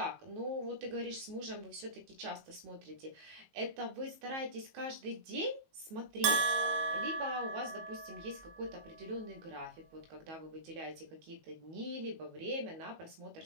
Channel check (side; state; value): left; late; 19 ms